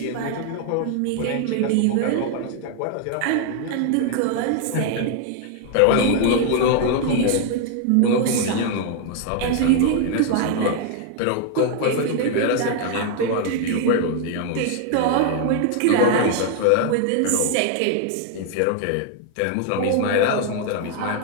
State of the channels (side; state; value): both; different; correlation 0.00